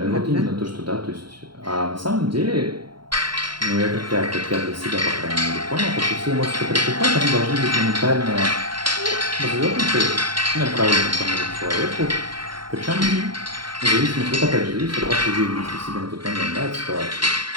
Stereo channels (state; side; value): late; left; 0.72 ms